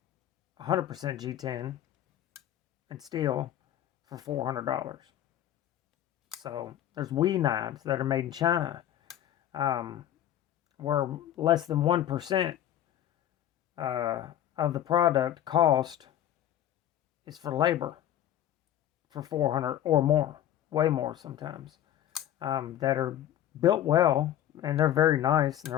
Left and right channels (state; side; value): quieter; right; 11.5 dB